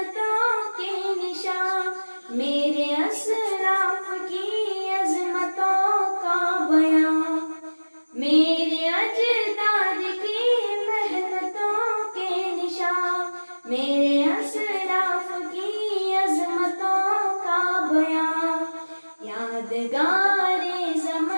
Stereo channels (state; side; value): inverted; both; correlation -1.00